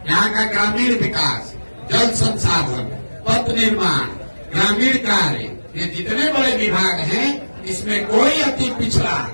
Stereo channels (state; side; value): inverted; both; correlation -1.00